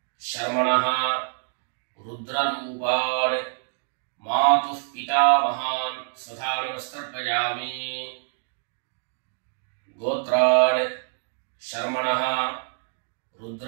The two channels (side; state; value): left; silent; digital silence